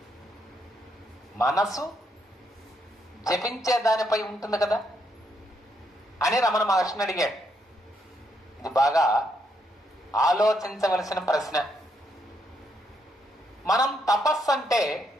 మనసు జపించే దానిపై ఉంటుంది కదా అని రమణ మహర్షిని అడిగాడు. ఇది బాగా ఆలోచించవలసిన ప్రశ్న. మనం తపస్సు అంటే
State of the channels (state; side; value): normal; both; correlation 0.76